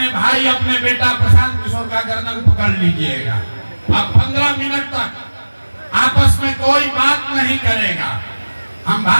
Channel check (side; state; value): both; inverted; correlation -1.00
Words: भाई, अपने बेटा प्रशांत किशोर का गर्दन पकड़ लीजिएगा। अब 15 मिनट तक आपस में कोई बात नहीं करेगा, हम